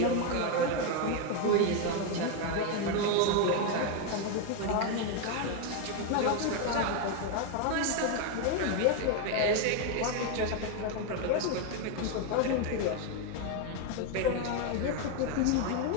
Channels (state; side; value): different; both; correlation 0.02